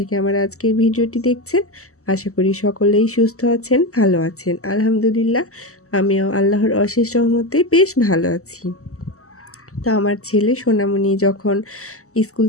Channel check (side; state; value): right; late; 0.64 ms